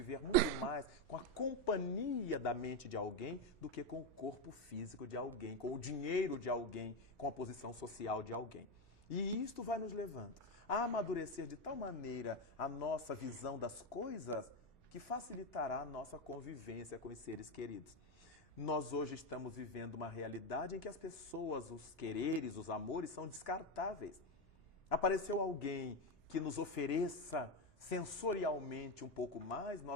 muito mais com a companhia da mente de alguém do que com o corpo físico de alguém, com o dinheiro de alguém, com a posição social de alguém. E isto vai nos levando a amadurecer de tal maneira a nossa visão das coisas que facilitará a nossa convivência com os seres queridos. Nós hoje estamos vivendo uma realidade em que as pessoas, os quereres, os amores são descartáveis. Apareceu alguém que nos ofereça sensorialmente um pouco mais,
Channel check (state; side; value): normal; both; correlation 0.10